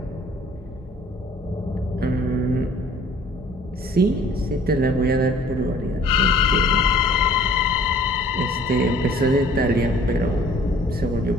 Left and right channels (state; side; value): normal; both; correlation 0.53